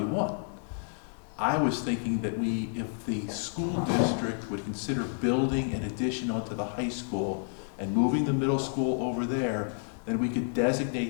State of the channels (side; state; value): right; silent; 58 dB below the other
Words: want. I was thinking that if the school district would consider building an addition onto the high school and moving the middle school over there, then we could